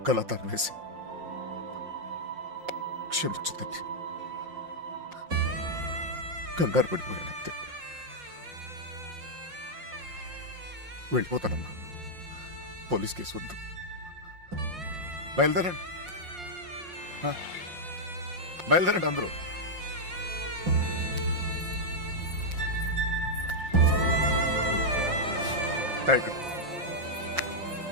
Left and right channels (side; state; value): left; late; 5.6 ms